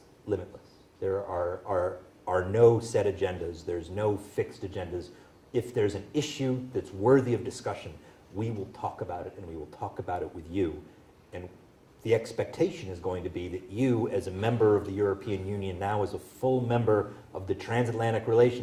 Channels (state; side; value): identical; both; correlation 1.00